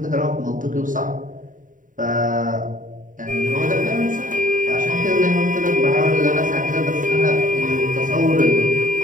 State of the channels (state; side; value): late; left; 0.38 ms